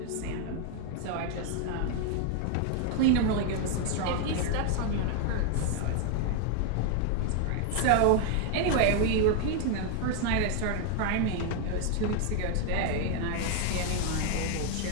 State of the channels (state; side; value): different; both; correlation 0.01